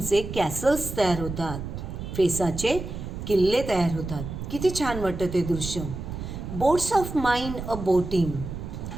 कॅसल्स तयार होतात, फेसाचे किल्ले तयार होतात. किती छान वाटतं ते दृश्य. Boats of mine a boating.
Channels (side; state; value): right; noise; rumble, 8 dB below the sound